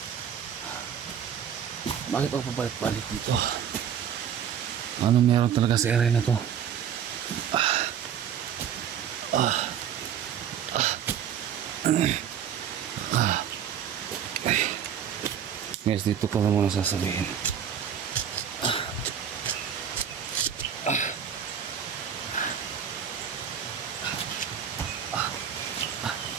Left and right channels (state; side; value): quieter; left; 8.7 dB